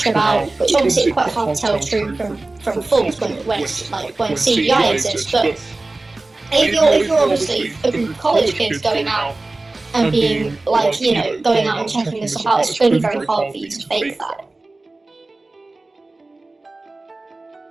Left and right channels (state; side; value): quieter; left; 3.1 dB